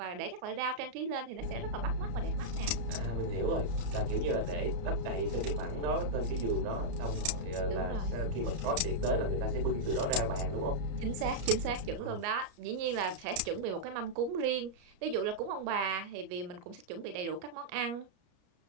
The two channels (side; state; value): left; late; 34 ms